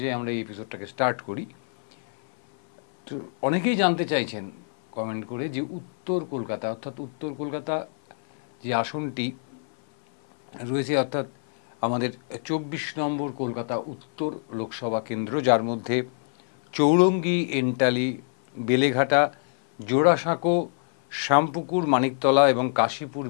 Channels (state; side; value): silent; right; 61 dB below the other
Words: আমরা এই এপিসোডটাকে স্টার্ট করি। তো অনেকেই জানতে চাইছেন কমেন্ট করে যে উত্তর কলকাতা, অর্থাৎ উত্তর কলকাতা যে আসনটি রয়েছে, অর্থাৎ আমাদের 24 নম্বর কলকাতা উত্তর লোকসভা কেন্দ্র, যার মধ্যে চৌরঙ্গি, এন্টালি, বেলেঘাটা, জোড়াসাঁকো, শ্যামপুকুর, মানিকতলা এবং কাশীপুর